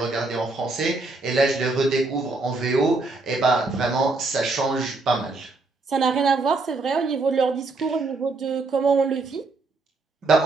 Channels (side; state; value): left; quieter; 3.5 dB